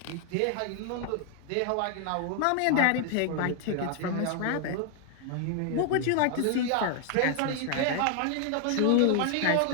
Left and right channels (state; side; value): different; both; correlation 0.00